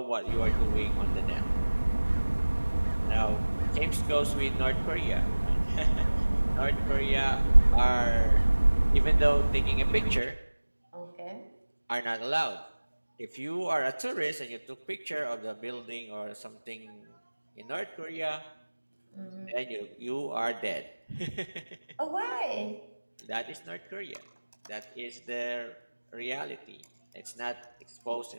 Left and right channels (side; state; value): both; inverted; correlation -1.00